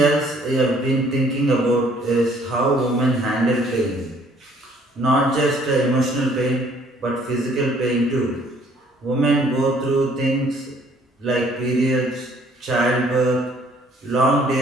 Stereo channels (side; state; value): both; normal; correlation 0.60